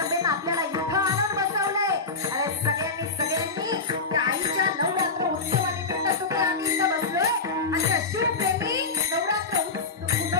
आपल्याला इथं आणून बसवलंय। अरे सगळ्यांनी त्या आईच्या नवरात्र उत्सवानिमित्त तुम्ही आम्ही इथं बसलोय आणि त्या शिवप्रेमी नवरात्र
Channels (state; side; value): quieter; right; 4.0 dB